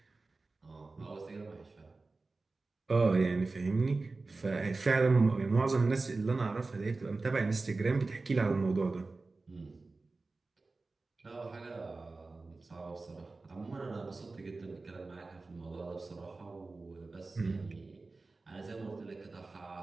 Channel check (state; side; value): quieter; left; 3.6 dB